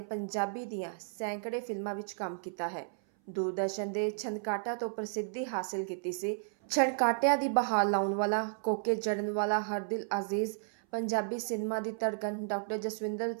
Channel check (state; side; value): silent; left; 56 dB below the other